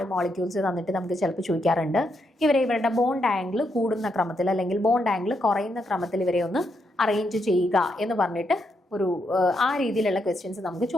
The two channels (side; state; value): both; normal; correlation 0.80